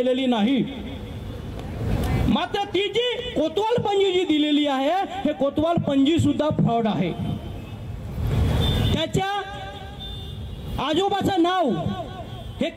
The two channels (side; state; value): both; identical; correlation 1.00